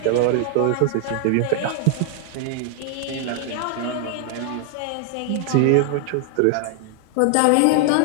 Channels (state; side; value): different; both; correlation 0.00